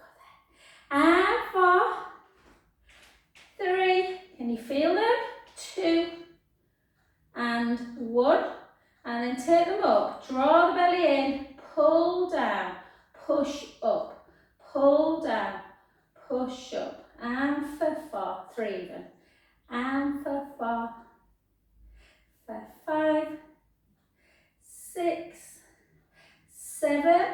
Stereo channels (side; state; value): both; identical; correlation 1.00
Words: there. And 4, 3, can you feel them? 2, and 1. And then take them up, draw the belly in, pull down, push up, pull down, push up, and for 4, 3 even, and for 4, for 5, 6, 7,